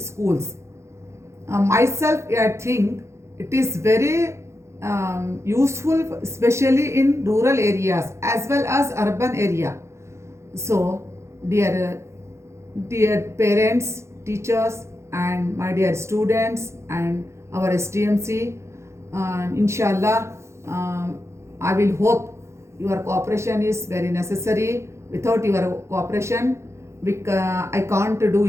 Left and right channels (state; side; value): late; left; 0.13 ms